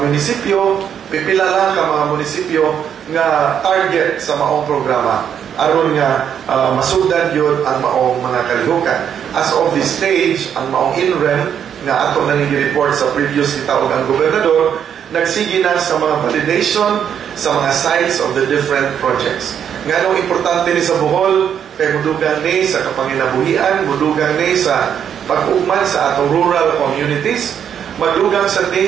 pipila lang ka mga munisipyo nga target sa maong programa. Aron nga masugdan yun ang maong mga kalihukan. As of this stage, ang maong INREM nga ato na nag-report sa previous kitawag ang gobernador, nagsige na sa mga validation sa mga sites of the different projects. Nga nung importante ni sa Bohol, kay mudugang ni sa kapanginabuhian, mudugang ni sa pag-ugman sa atong rural communities, madugang sa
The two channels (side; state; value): left; quieter; 8.6 dB